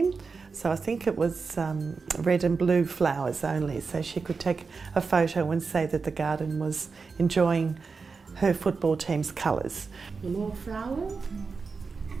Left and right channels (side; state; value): left; quieter; 4.8 dB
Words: So I think it was red and blue flowers only, so she could take a photo and say that the garden was enjoying her football team's colours. More flower,